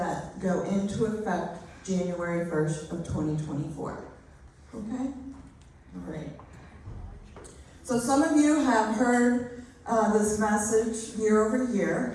go into effect January 1st of 2024. Okay? All right. So some of you have heard this message year over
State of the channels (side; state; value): both; identical; correlation 1.00